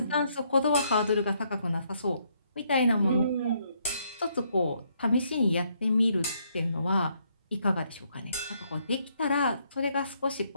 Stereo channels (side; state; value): both; inverted; correlation -0.72